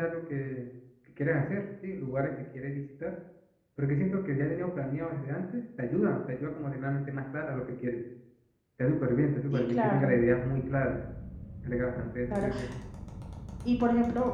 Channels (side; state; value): both; identical; correlation 1.00